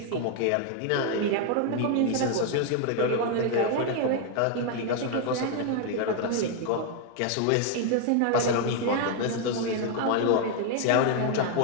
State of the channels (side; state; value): both; different; correlation 0.00